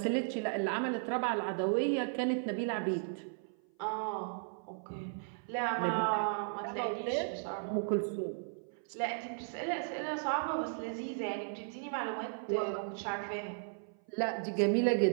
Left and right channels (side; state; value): left; silent; 54 dB below the other